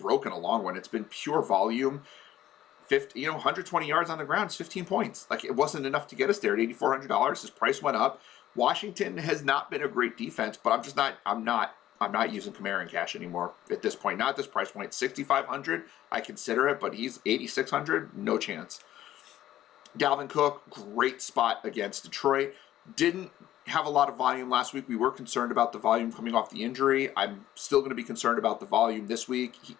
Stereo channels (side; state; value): right; quieter; 13.0 dB